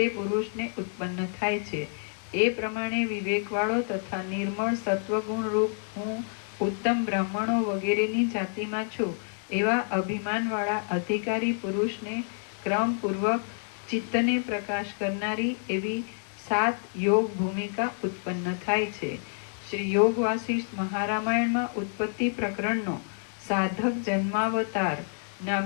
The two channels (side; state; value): right; silent; 59 dB below the other